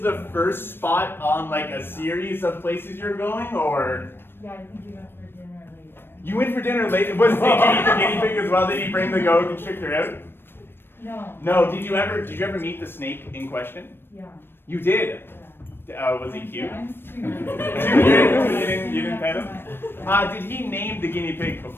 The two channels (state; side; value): late; right; 0.10 ms